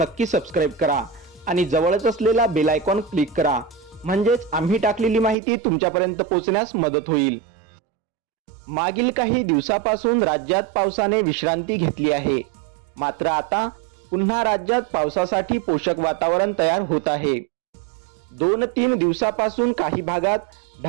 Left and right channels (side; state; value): left; drops out; at 5.4 s